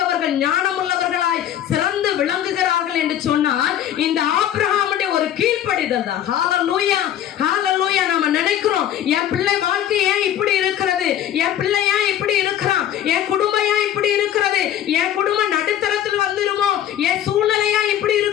ஞானமுள்ளவர்களாய் சிறந்து விளங்குகிறார்கள் என்று சொன்னால் இந்த ஆபிரகாமுடைய ஒரு கீழ்ப்படிதல் தான். ஹல்லேலூயா, ஹல்லேலூயா. நம்ம நினைக்கிறோம் என் பிள்ளை வாழ்க்கை ஏன் இப்படி இருக்கிறது, என் பிள்ளை ஏன் இப்படி இருக்கிறான், என் குடும்பம் ஏன் இப்படி இருக்கிறது, என் குடும்பம் நடுத்தரத்தில் வந்துருமோ, என் சூழ்நிலையா இப்படி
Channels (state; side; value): quieter; right; 10.9 dB